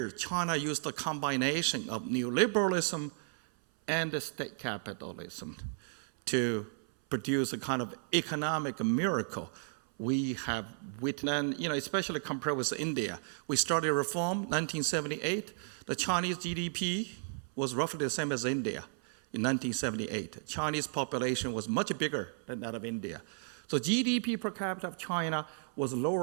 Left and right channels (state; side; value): silent; left; 55 dB below the other